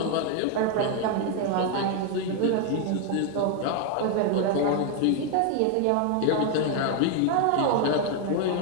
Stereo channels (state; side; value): different; both; correlation 0.01